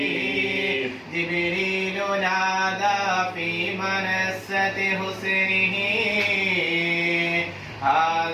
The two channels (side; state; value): both; identical; correlation 1.00